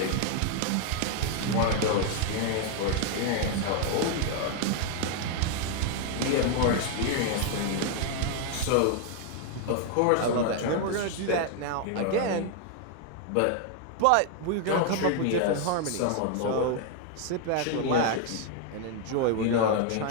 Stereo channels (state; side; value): different; both; correlation 0.00